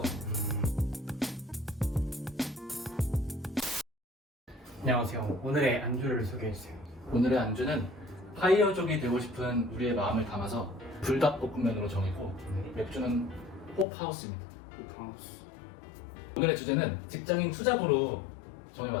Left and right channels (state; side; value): drops out; right; at 13.9 s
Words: 같아. 안녕하세요. 오늘의 안주를 소개해주세요. 오늘의 안주는 파이어족이 되고 싶은 우리의 마음을 담아서 불닭볶음면으로 정했고, 맥주는 호프하우스입니다. 호프하우스. 오늘의 주제는 직장인 투잡으로